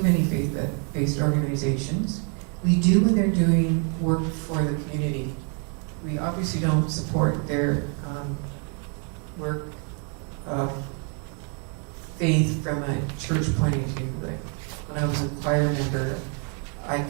many faith-based organizations. We do when they're doing work for the community. We obviously don't support their work of faith from a church point of view. Like when I was a choir member, I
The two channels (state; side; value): quieter; left; 38.7 dB